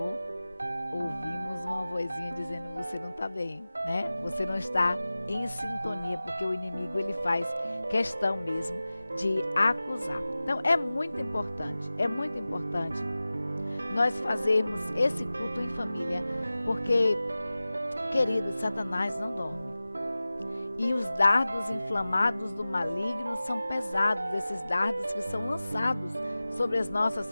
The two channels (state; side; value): inverted; both; correlation -0.97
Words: ouvimos uma vozinha dizendo: você não está bem, né? Você não está em sintonia, porque o inimigo ele faz questão mesmo de acusar. Então é muito importante nós fazermos esse culto em família, porque, queridos, Satanás não dorme. E os dardos inflamados do maligno são pesados, esses dardos que são lançados sobre as